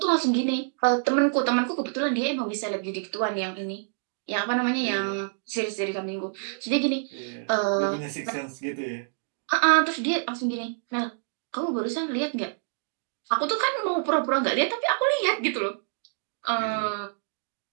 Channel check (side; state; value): left; silent; digital silence